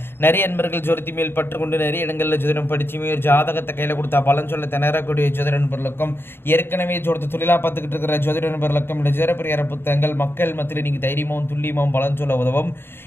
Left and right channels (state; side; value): late; right; 0.11 ms